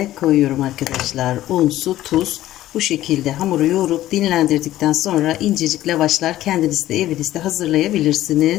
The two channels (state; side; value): quieter; right; 14.3 dB